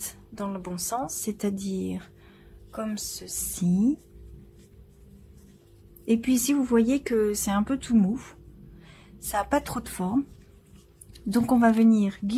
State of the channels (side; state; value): both; identical; correlation 1.00